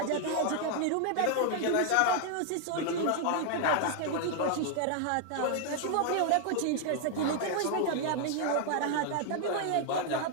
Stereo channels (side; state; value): both; different; correlation 0.00